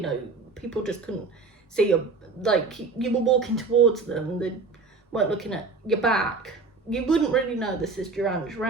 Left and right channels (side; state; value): left; quieter; 4.1 dB